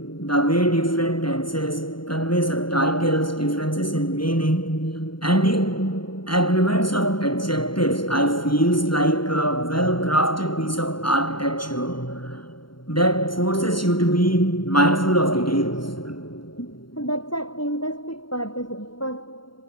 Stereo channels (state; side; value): late; right; 0.73 ms